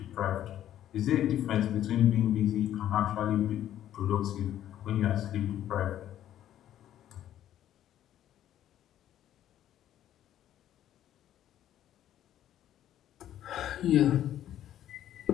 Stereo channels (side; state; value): right; quieter; 11.7 dB